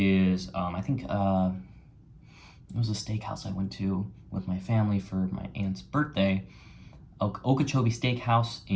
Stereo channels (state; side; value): identical; both; correlation 1.00